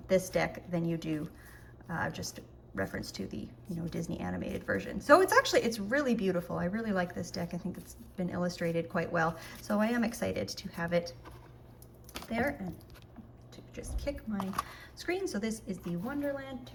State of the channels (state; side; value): identical; both; correlation 1.00